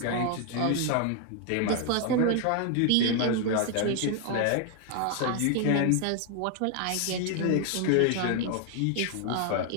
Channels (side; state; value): both; different; correlation 0.00